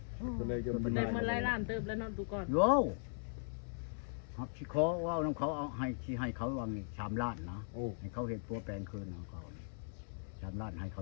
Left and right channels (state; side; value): silent; right; digital silence